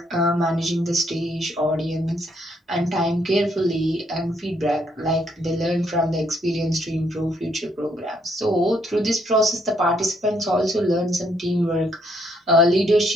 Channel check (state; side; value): normal; both; correlation 0.71